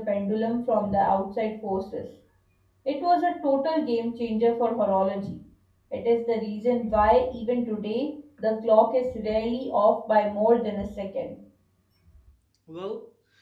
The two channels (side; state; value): both; identical; correlation 1.00